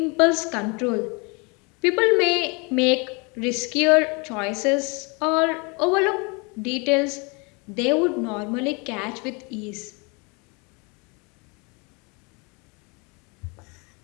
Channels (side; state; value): right; quieter; 30.6 dB